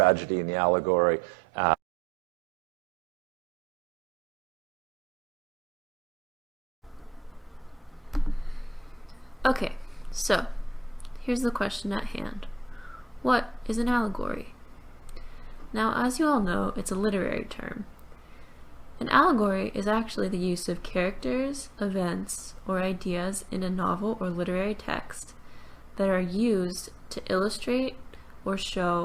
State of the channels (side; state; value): both; normal; correlation 0.83